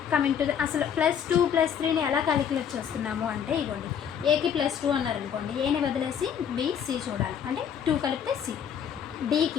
కమింగ్ టు అసలు +2 +3ని ఎలా క్యాలిక్యులేట్ చేస్తున్నాము అంటే ఇగోండి, ఏకి +2 అన్నారనుకోండి, ఏని వదిలేసి బి సి చూడాలి, అంటే 2 కలిపితే సి.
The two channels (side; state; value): right; quieter; 8.2 dB